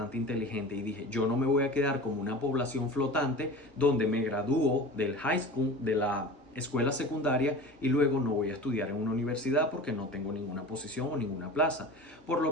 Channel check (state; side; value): normal; both; correlation 0.36